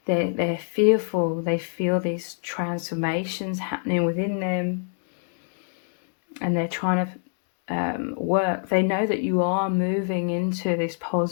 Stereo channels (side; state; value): right; silent; 58 dB below the other